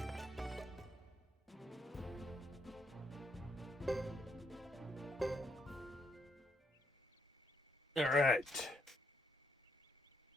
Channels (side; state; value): both; normal; correlation 0.75